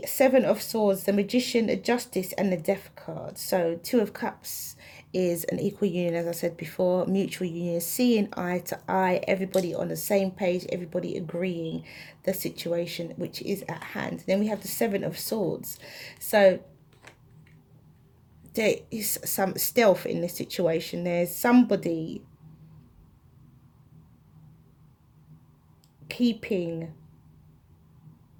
Seven of Swords, the Magician, the Justice, and the Death card. So Two of Cups is an equal union, as I said before, mutual union, seeing eye to eye, everybody on the same page, everybody agreeing the situation which is at hand. Then we have the Seven of Swords. So there is some stealth in this situation. There's somebody keeping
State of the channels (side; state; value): both; identical; correlation 1.00